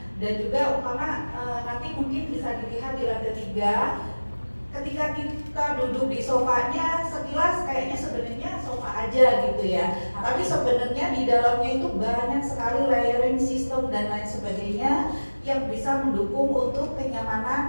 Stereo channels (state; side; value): inverted; both; correlation -1.00